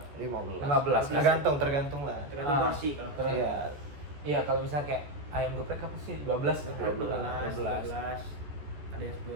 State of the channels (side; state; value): left; late; 14 ms